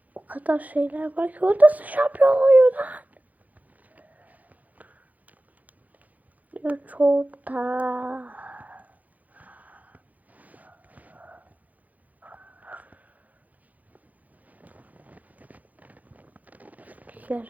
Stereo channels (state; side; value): late; left; 0.078 ms